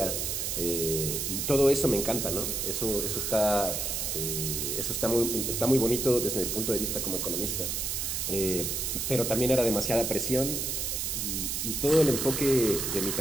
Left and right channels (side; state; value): right; noise; hiss, 1 dB below the sound